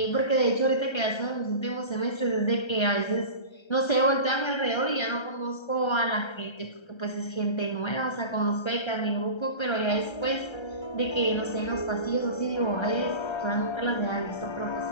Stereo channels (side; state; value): right; late; 1.3 ms